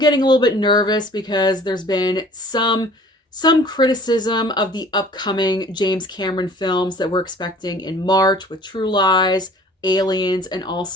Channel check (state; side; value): normal; both; correlation 0.50